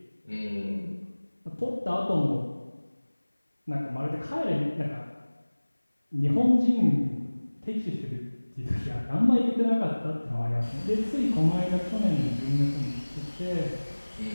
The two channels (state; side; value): inverted; both; correlation -1.00